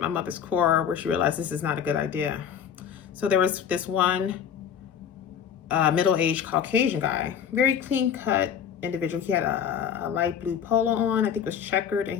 mother's core where she realized this is not a good idea. So there was this one middle-aged Caucasian guy, very clean-cut individual. He had a light blue polo on, I think it was checkered,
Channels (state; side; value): quieter; right; 8.3 dB